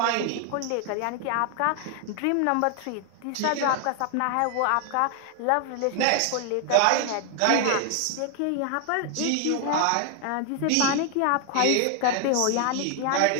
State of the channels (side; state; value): both; different; correlation 0.00